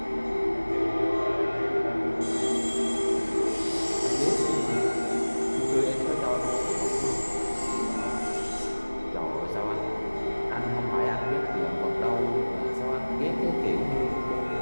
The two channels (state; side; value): inverted; both; correlation -1.00